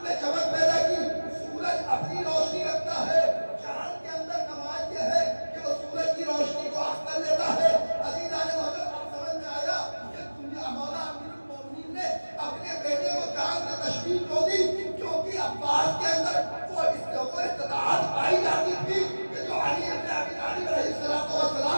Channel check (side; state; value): both; inverted; correlation -1.00